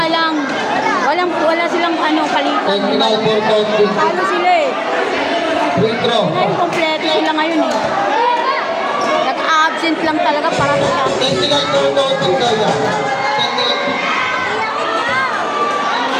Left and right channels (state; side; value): identical; both; correlation 1.00